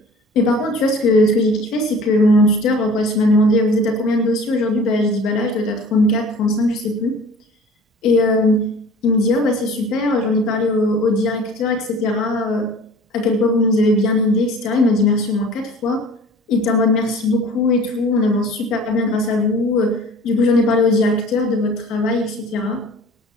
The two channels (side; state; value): both; normal; correlation 0.45